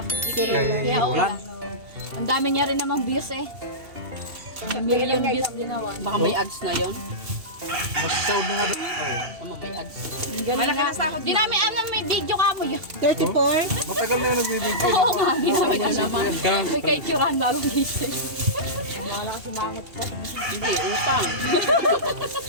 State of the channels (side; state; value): left; late; 2.7 ms